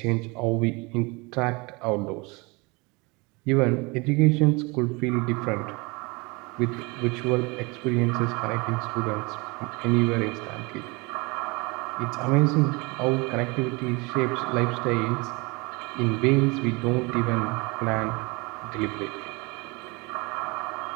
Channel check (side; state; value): left; quieter; 27.1 dB